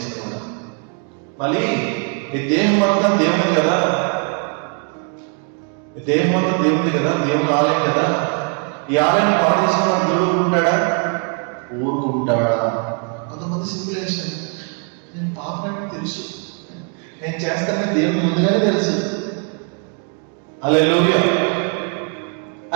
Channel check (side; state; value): left; quieter; 38.5 dB